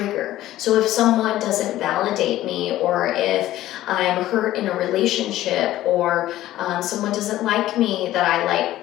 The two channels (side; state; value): right; quieter; 14.5 dB